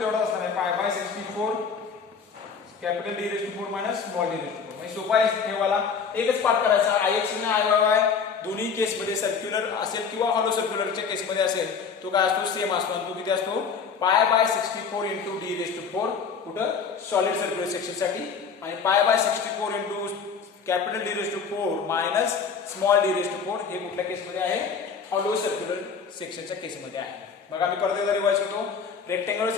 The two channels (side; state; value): right; quieter; 5.9 dB